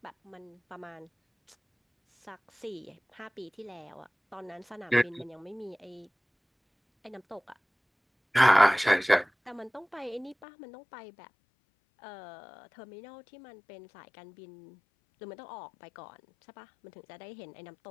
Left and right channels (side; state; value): right; drops out; at 10.4 s